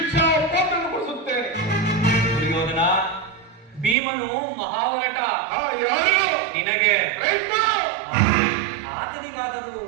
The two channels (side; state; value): left; drops out; at 4.0 s